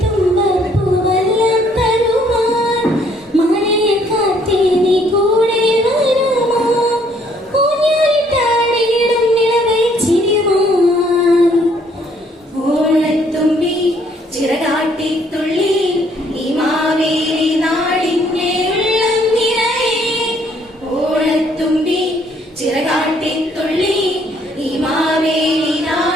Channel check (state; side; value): normal; both; correlation 0.65